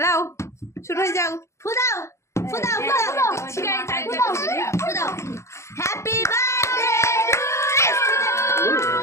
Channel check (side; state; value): right; late; 0.14 ms